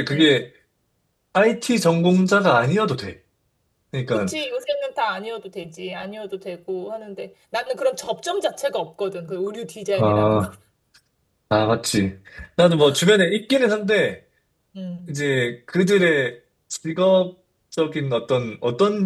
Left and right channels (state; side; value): identical; both; correlation 1.00